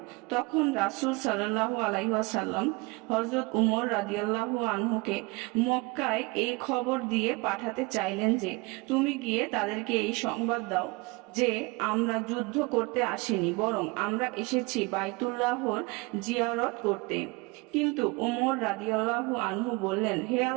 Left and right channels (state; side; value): quieter; left; 25.7 dB